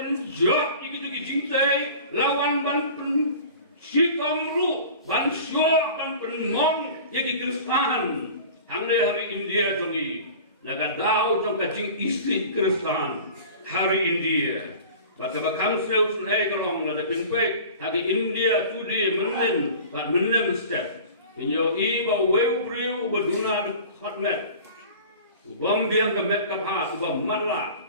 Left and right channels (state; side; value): inverted; both; correlation -0.41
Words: gitu kijing tei lawan ban sikamru ban syok ban penmong yagi Kristan hamne hari India jongi naga daw jong kacing istri Kristan hari India bata bakam seus nei kalong na dapin kwek hagi India tudi menen bat menem step inyo i ba weu priu baduna hotmet ubom biang ka met ka pha ubom matla